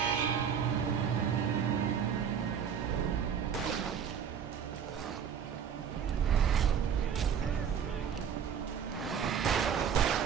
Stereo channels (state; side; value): quieter; left; 7.7 dB